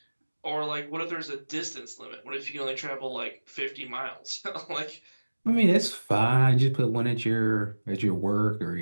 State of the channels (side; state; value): both; inverted; correlation -1.00